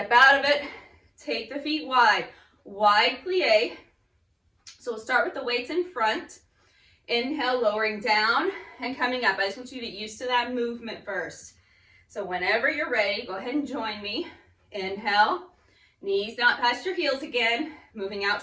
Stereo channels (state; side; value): identical; both; correlation 1.00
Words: out of it. Take the feet wide. Wide plie. So we'll start with the weights in front. Inhale, lowering down and coming up. I just want you to get used to that movement first. So whenever you're ready, go ahead and join me. Inhale, knees not past your heels again, moving out